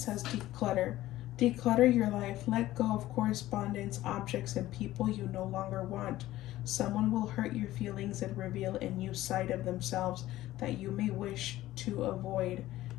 declutter. Declutter your life. Let go of correspondence, objects, and people you no longer want. Someone will hurt your feelings and reveal a new side of themselves that you may wish to avoid.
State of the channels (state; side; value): quieter; right; 15.5 dB